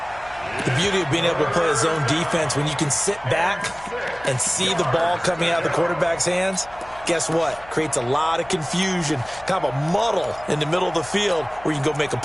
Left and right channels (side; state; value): left; noise; hum, 22 dB below the sound